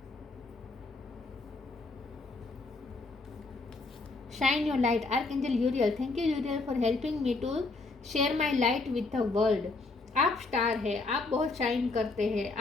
Shine your light, archangel Uriel. Thank you Uriel for helping me to share my light with the world. आप स्टार है, आप बहुत शाइन करते हैं,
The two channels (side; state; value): right; quieter; 3.6 dB